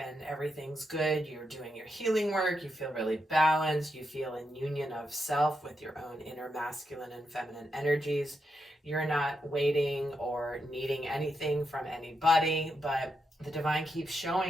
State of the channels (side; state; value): both; normal; correlation 0.84